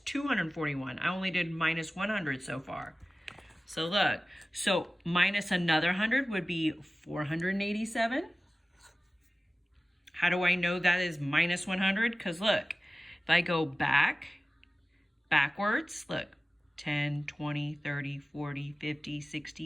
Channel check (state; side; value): normal; both; correlation 0.96